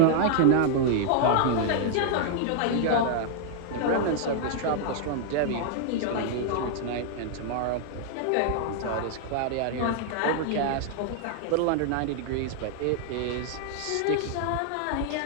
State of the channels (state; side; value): different; both; correlation 0.00